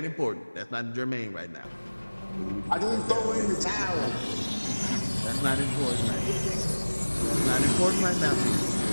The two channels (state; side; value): inverted; both; correlation -1.00